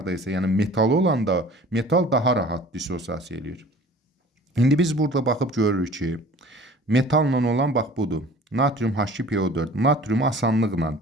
isə, yəni metal olanda, metal daha rahat dissosiasiya eləyir. İndi biz burada baxıb görürük ki, metalla olan bax budur. Natrium H2PO4. Natrium asanlıqla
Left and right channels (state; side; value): normal; both; correlation 0.46